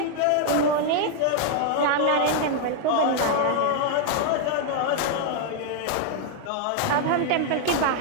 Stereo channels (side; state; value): both; different; correlation 0.00